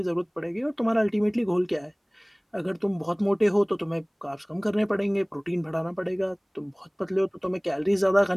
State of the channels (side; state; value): both; identical; correlation 1.00